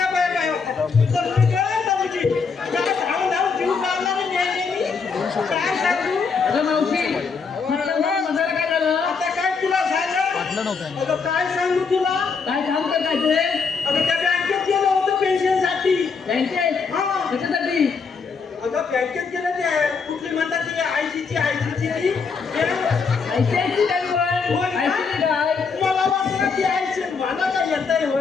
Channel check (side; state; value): right; quieter; 5.2 dB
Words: काय सांगू तुला, काय काम करायचं? अगं त्या बँकेत गेलो होतो पेन्शनसाठी. बँकेत? हा. कशासाठी? अगं बँकेत गेलं ते कुठली म्हणतात ते आयसीची मला वाटलं की आयसी मला काय येतंय